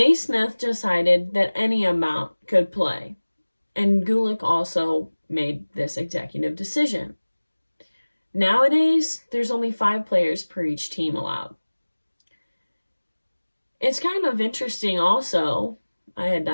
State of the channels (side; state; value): both; inverted; correlation -1.00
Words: decided that any amount could play, and Gulick also made this executive decision. Nowadays, there's only 5 players per each team allowed. It's kind of interesting also, I had